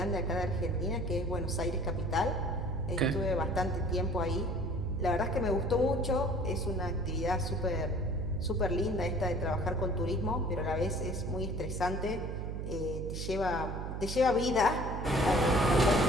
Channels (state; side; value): noise; right; hum, 5 dB below the sound